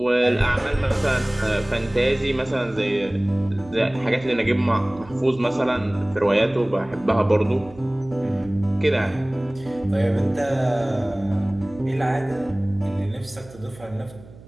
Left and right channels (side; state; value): right; noise; hum, 20 dB below the sound